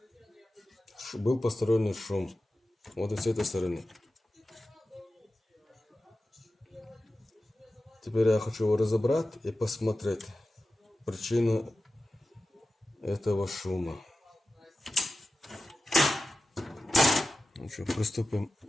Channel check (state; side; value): normal; both; correlation 0.94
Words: Был посторонний шум. Вот и с этой стороны. Теперь я хочу его разобрать и посмотреть причину этого шума. Ну что, приступим